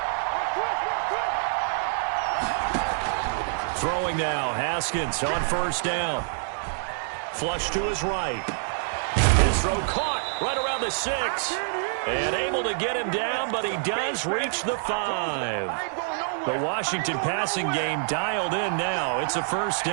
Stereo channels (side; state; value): left; silent; digital silence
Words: Throwing now, Haskins on first down. Flush to his right. His throw caught right around the 6. And able to get him down, but he does reach the 5. The Washington passing game dialed in now. It's a first